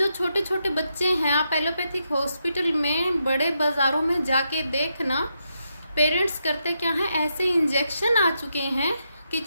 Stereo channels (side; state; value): both; inverted; correlation -0.82